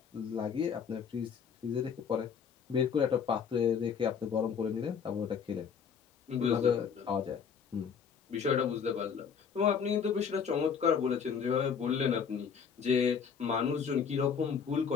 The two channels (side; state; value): right; quieter; 6.7 dB